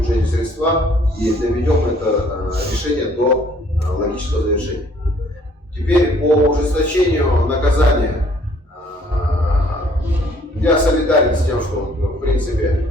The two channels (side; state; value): both; normal; correlation 0.60